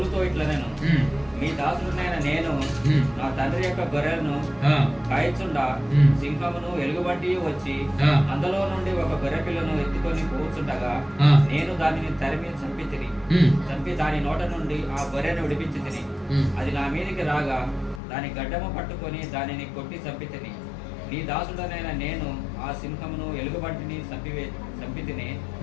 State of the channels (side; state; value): right; drops out; at 18.0 s